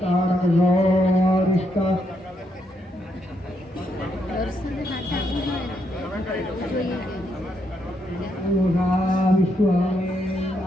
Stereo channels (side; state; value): both; normal; correlation 0.77